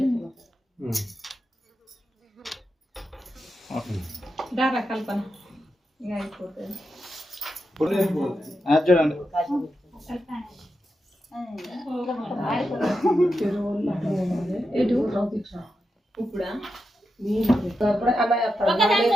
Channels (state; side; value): normal; both; correlation 0.88